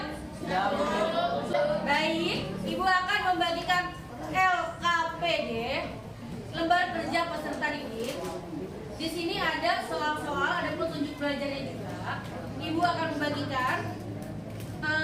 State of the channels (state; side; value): identical; both; correlation 1.00